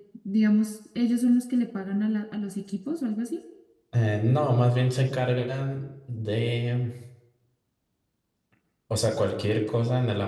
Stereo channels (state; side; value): identical; both; correlation 1.00